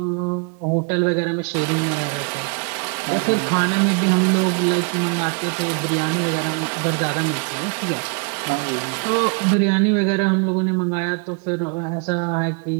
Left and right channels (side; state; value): left; quieter; 36.5 dB